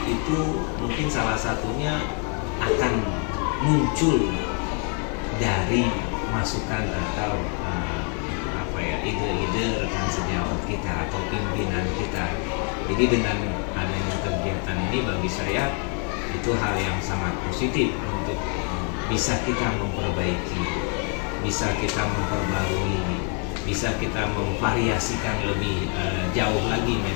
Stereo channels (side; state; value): right; quieter; 40.0 dB